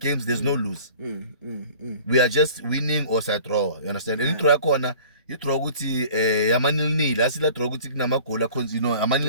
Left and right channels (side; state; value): both; inverted; correlation -0.46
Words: there's no lose. We are just winning or side draw. You understand? And you throw a corner, you throw guti yamanil nil. I see that throw guti namakola cons, you know,